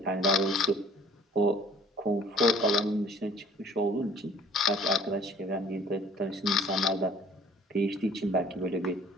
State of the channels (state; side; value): normal; both; correlation 0.53